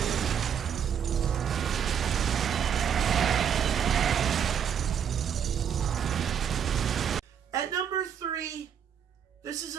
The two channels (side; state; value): left; quieter; 8.2 dB